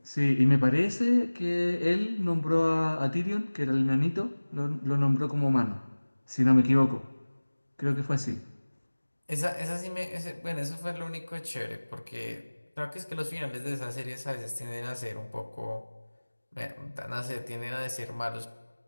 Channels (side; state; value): both; inverted; correlation -1.00